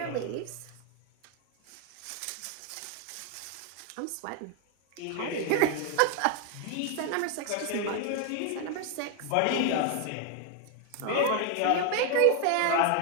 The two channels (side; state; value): both; different; correlation 0.01